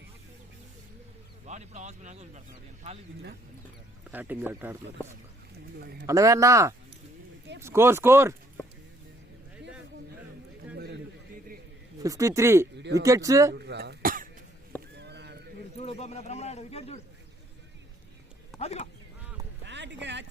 వాడు ఇప్పుడు హాస్పిటల్ వదిలిపెడుతున్నాడు ఖాళీ బ్యాటింగ్ ఎట్ ఆడుతున్నారు. అన్నవేనా స్కోర్ 53 వికెట్స్. చూడు బ్రహ్మనాయుడు వికెట్ చూడు. అదిగో batting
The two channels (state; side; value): normal; both; correlation 0.65